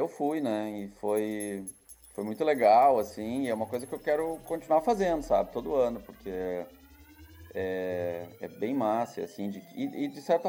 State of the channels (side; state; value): both; identical; correlation 1.00